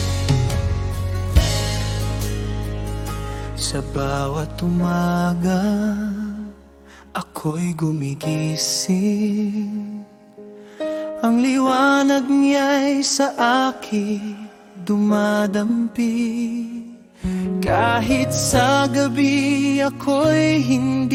sa bawat umaga ako'y gumigising. Ang liwanag niya'y sa akin dumadampi. Kahit sa gabi ako'y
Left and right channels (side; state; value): both; identical; correlation 1.00